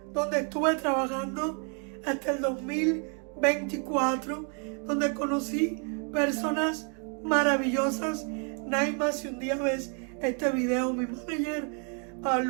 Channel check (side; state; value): left; quieter; 39.6 dB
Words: donde estuve trabajando hasta el 2024, donde conocí personas maravillosas. Naima, si un día ves este video, mi manager, a